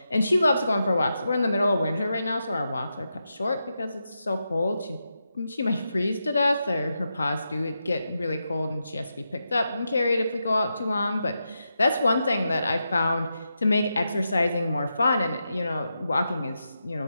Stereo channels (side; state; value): both; inverted; correlation -0.87